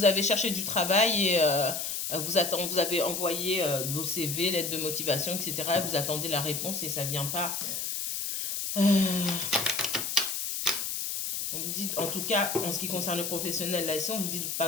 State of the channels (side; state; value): left; noise; hiss, 3 dB below the sound